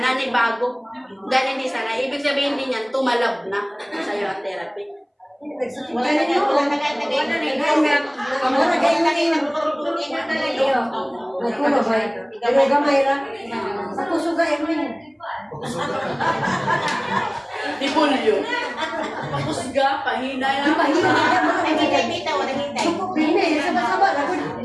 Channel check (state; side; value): identical; both; correlation 1.00